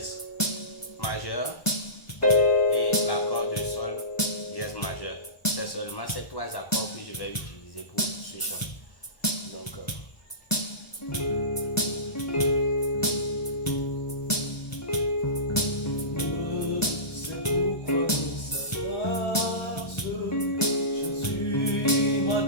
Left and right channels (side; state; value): right; late; 1.1 ms